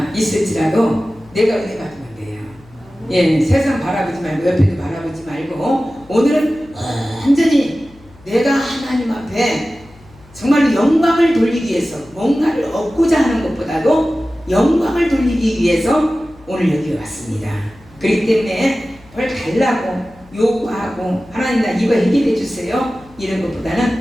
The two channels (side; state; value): left; noise; hum, 25 dB below the sound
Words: 있을지라도 내가 은혜 받으면 돼요. 예, 세상 바라보지 말고 옆에도 바라보지 말고 오늘은 완전히 내가 하나님 앞에 정말로 영광을 돌리기 위해서 뭔가를 얻고자 하는 것보다도 영광을 돌리기 위해서 오늘 여기 왔습니다. 그렇기 때문에 뭘 달라고 요구하고 하나님 나 이거 해결해 주세요 이런